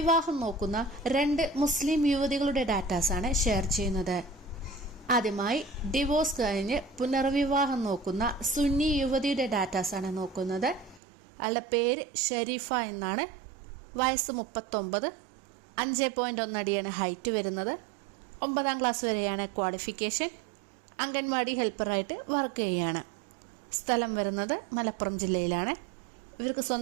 നോക്കുന്ന 2 മുസ്ലിം യുവതികളുടെ ഡാറ്റാസാണ് ഷെയർ ചെയ്യുന്നത്. ആദ്യമായി ഡിവോഴ്സ് കഴിഞ്ഞ് പുനർവിവാഹം നോക്കുന്ന സുന്നി യുവതിയുടെ ഡാറ്റാസാണ് നോക്കുന്നത്. അവളുടെ പേര് ഷെരീഫ എന്നാണ്. വയസ്സ് 39, 5.1 അടിയാണ് ഹൈറ്റ് വരുന്നത്. 9ാം ക്ലാസ് വരെയാണ് ക്വാളിഫിക്കേഷൻ. അംഗൻവാടി ഹെൽപ്പറായിട്ട് വർക്ക് ചെയ്യുകയാണ്. സ്ഥലം വരുന്നത് മലപ്പുറം ജില്ലയിലാണ്. ഇവർക്ക്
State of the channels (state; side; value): drops out; left; at 11.0 s